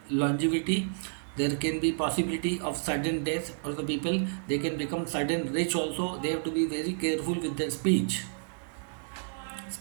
longevity. There can be possibility of sudden death for the people. They can become sudden rich also. They have to be very careful with their speech.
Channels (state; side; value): silent; left; digital silence